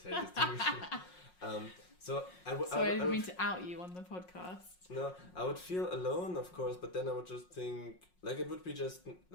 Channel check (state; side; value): late; right; 5.5 ms